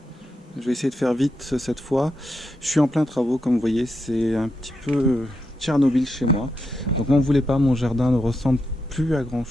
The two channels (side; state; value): both; normal; correlation 0.84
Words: Je vais essayer de faire vite cette fois. Je suis en plein travaux, comme vous voyez, c'est un petit peu Tchernobyl chez moi. Donc n'en voulez pas, mon jardin ne ressemble plus à grand